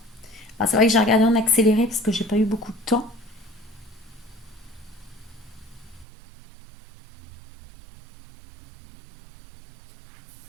Alors, c'est vrai que j'ai regardé en accéléré parce que j'ai pas eu beaucoup de temps.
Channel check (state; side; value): drops out; left; at 6.1 s